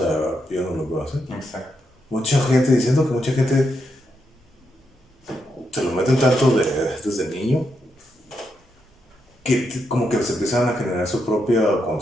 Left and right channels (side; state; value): both; normal; correlation 0.82